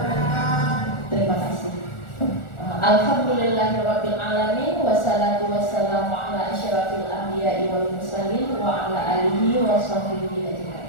Terima kasih. Alhamdulillahirabbil alamin, wassalatu wassalamu ala asyrafil anbiya'i wal mursalin wa ala alihi wa sahbihi ajmain.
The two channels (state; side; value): late; right; 1.4 ms